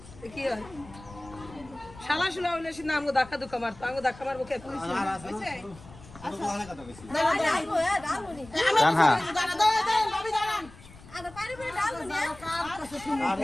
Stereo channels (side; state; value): left; noise; rumble, 20 dB below the sound